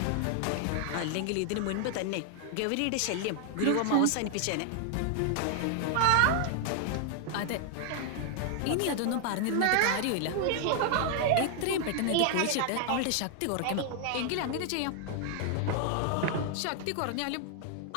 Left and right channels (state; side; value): different; both; correlation 0.00